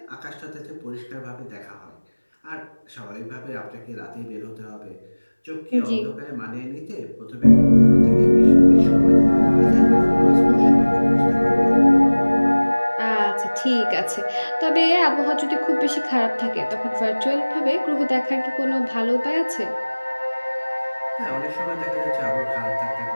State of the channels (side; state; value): both; inverted; correlation -1.00